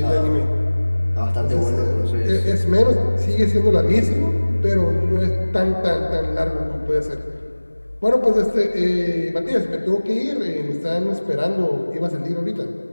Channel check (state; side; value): inverted; both; correlation -1.00